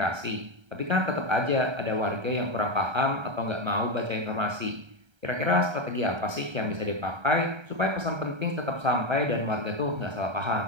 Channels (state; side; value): late; left; 1.3 ms